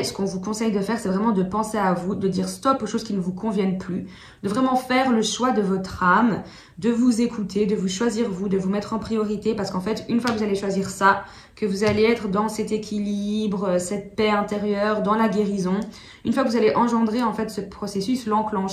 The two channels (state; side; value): identical; both; correlation 1.00